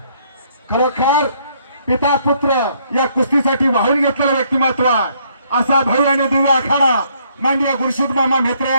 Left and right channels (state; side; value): inverted; both; correlation -0.68